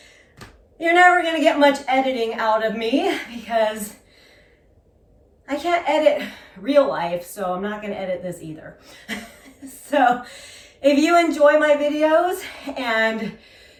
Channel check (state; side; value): identical; both; correlation 1.00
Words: you're never going to get much editing out of me because I can't edit real life, so I'm not going to edit this either. So if you enjoy my videos and